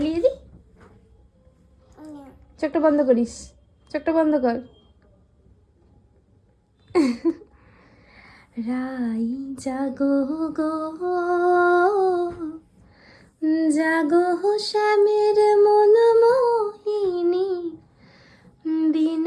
দি, চোখটা বন্ধ করিস, চোখটা বন্ধ কর। রাই জাগো গো জাগো শ্যামের মন মোহিনী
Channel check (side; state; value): both; identical; correlation 1.00